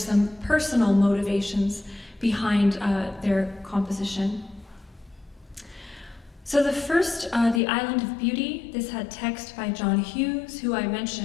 personal motivations behind their composition. So the first, The Island of Beauty, this had text by John Hughes, who I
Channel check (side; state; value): right; drops out; at 7.6 s